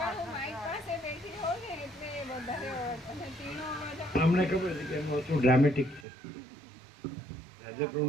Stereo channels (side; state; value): left; drops out; at 6.1 s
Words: અમને ખબર છે કે એનું અસુર ડ્રામેટિક છે.